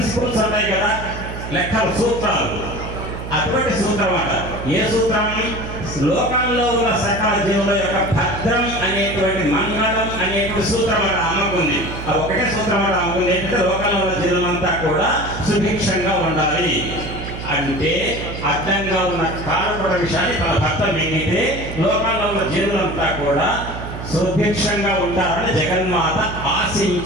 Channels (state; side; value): noise; right; hum, 8 dB below the sound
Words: ఉంటాయి కదా, లెక్కల సూత్రాలు, అటువంటి సూత్రం అట. ఏ సూత్రం? లోకంలో ఉన్న సకల జీవుల యొక్క భద్రం అనేటువంటి మంగళం అనేటువంటి సూత్రం అట అమ్మకుంది. అది ఒకటే సూత్రం అట అమ్మకుంది. ఏంటంటే లోకంలో ఉన్న జీవులంతా కూడా సుభిక్షంగా ఉండాలి అంటే అడ్డంగా ఉన్న కాలకోట విషయాన్ని తన భర్త మింగితే లోకంలో ఉన్న జీవులంతా కూడా సుభిక్షంగా ఉంటారని జగన్మాత